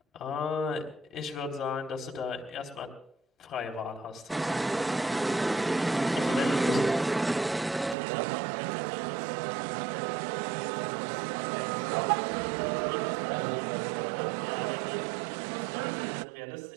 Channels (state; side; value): drops out; left; at 8.0 s